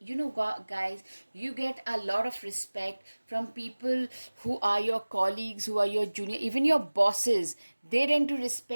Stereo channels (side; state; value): both; inverted; correlation -1.00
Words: guys, you get a lot of respect from people who are your colleagues, who are your junior, even your bosses. They tend to